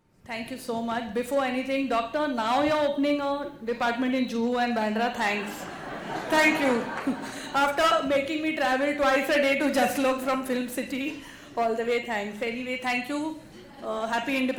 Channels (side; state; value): both; identical; correlation 1.00